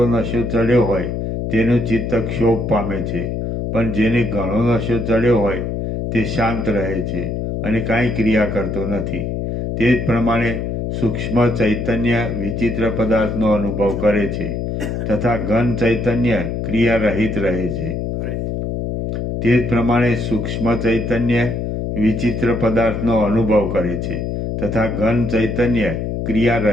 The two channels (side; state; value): left; noise; hum, 3 dB below the sound